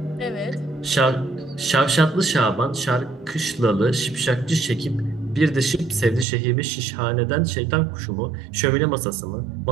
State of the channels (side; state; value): left; drops out; at 6.2 s